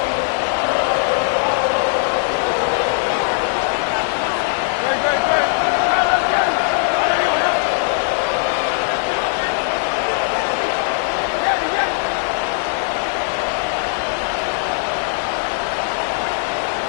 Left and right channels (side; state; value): right; silent; 58 dB below the other